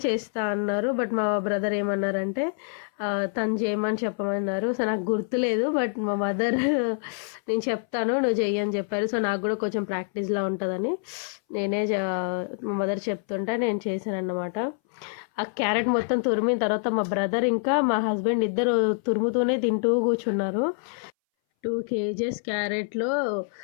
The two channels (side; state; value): right; silent; 60 dB below the other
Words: చేస్తా అన్నారు, బట్ మా బ్రదర్ ఏమన్నారంటే తను చేయమని చెప్పమన్నారు. సో నాకు గుర్తులేదు, బట్ మా మదర్ నేను చెప్తాను నువ్వు చెయ్యని చెప్పారు. సో నాకు కూడా కొంచెం ప్రాక్టీస్లా ఉంటుందని నేనే మా మదర్ చెప్తుంటే నేను చేశాను అన్నమాట. ఆ క్యారెట్ మొత్తం తురిమిన తర్వాత మా బ్రదర్ ఇంకా మా హస్బెండ్ ఇద్దరు తురుముతూనే తింటూ కూర్చున్నారు. 2 kgs క్యారెట్లో